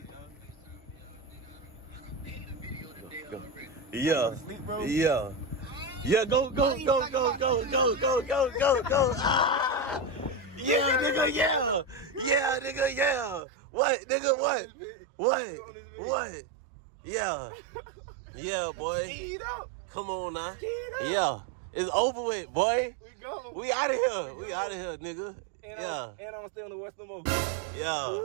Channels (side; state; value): left; drops out; at 13.5 s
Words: Yeah. Yeah, go. Ah! Yeah, nigga, yeah. What, nigga, what? Yeah, boy. Come on now. Yeah. It's over with, boy. We out of here, nigga. And I'm still in the Western Mall.